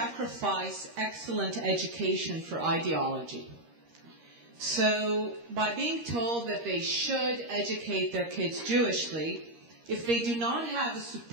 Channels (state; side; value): late; left; 13 ms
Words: excellent education for ideology. So by being told that they should educate their kids Jewishly, if they do not have a